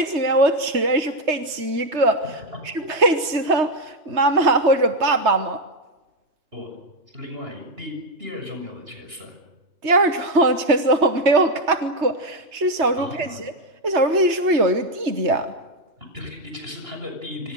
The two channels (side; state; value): left; late; 3.2 ms